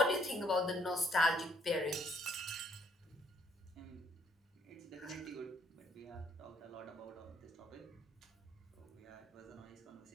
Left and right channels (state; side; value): normal; both; correlation 0.67